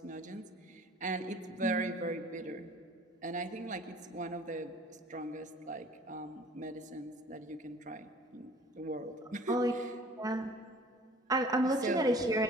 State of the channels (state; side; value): normal; both; correlation 0.49